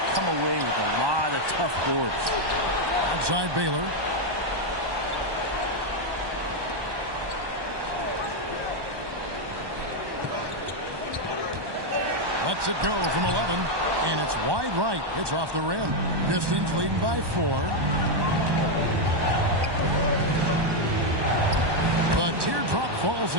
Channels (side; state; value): left; late; 1.2 ms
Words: come away with a lot of tough boards. Outside Baylor. Lets it go from 11, and it's wide right. It's off the rim. Pistons leading by 4. The teardrop falls